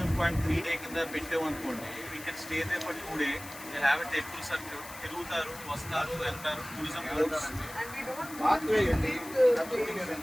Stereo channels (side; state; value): left; noise; hiss, 14 dB below the sound